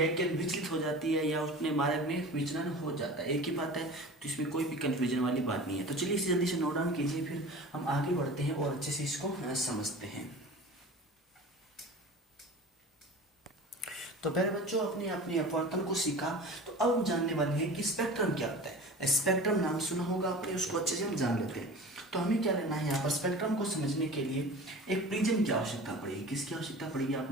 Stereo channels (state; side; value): normal; both; correlation 0.37